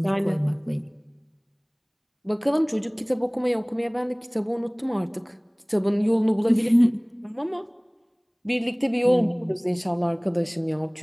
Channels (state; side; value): identical; both; correlation 1.00